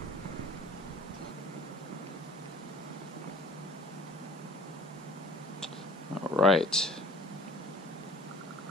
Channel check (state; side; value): normal; both; correlation 0.49